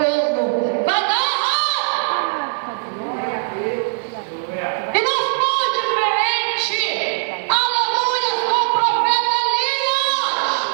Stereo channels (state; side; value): silent; left; digital silence